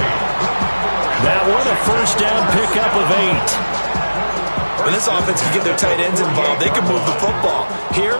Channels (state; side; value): inverted; both; correlation -1.00